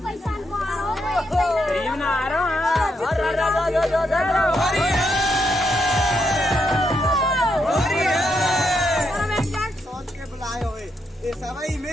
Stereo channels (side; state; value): both; normal; correlation 0.79